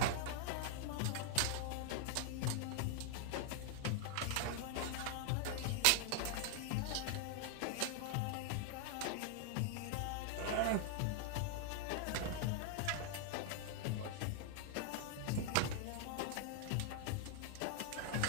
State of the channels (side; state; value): both; different; correlation 0.00